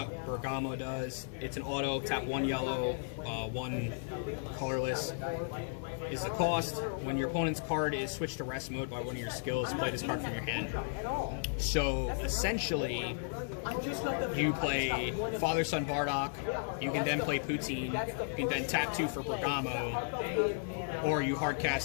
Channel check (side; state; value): right; silent; 55 dB below the other